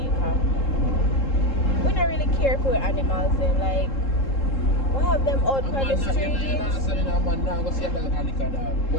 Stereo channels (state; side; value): late; right; 3.7 ms